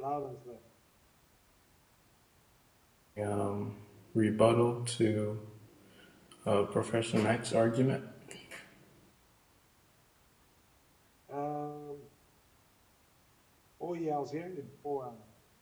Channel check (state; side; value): identical; both; correlation 1.00